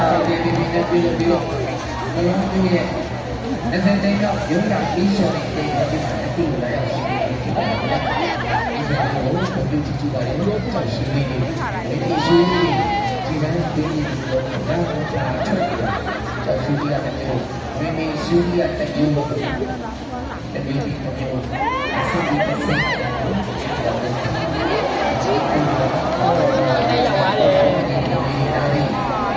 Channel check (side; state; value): both; identical; correlation 1.00